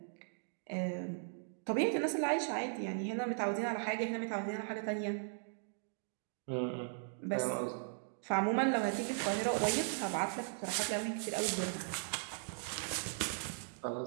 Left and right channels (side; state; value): left; silent; digital silence